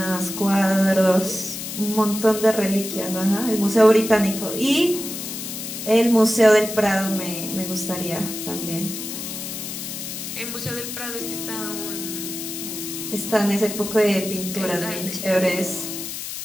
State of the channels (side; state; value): left; noise; hiss, 7 dB below the sound